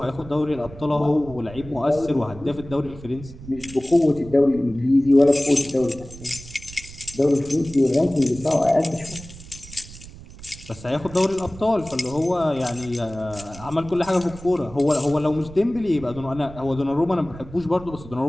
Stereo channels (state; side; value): noise; right; rumble, 16 dB below the sound